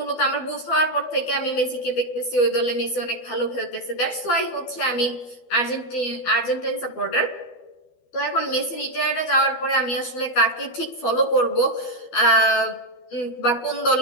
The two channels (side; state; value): right; late; 12 ms